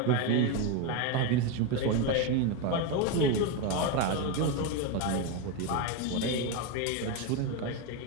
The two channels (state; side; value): different; both; correlation 0.04